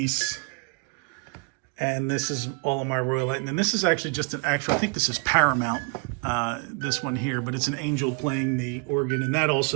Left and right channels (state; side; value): quieter; left; 34.7 dB